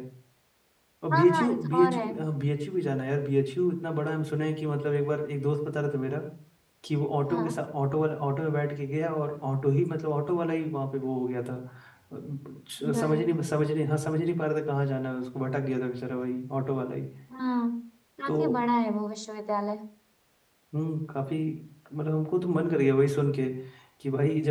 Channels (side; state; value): both; identical; correlation 1.00